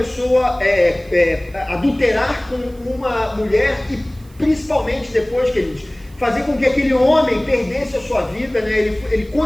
adulterar com uma mulher e principalmente depois, queridos, fazer com que aquele homem perdesse a sua vida, né? Ele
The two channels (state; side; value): noise; right; hiss, 28 dB below the sound